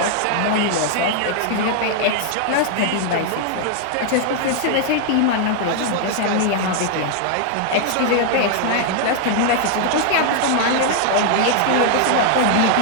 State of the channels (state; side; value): different; both; correlation 0.00